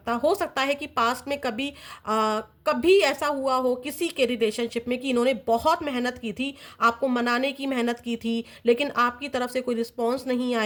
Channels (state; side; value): identical; both; correlation 1.00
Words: हो सकता है कि पास्ट में कभी ऐसा हुआ हो किसी के रिलेशनशिप में कि इन्होंने बहुत मेहनत की थी, आपको मनाने की मेहनत की थी, लेकिन आपकी तरफ से कोई रिस्पॉन्स नहीं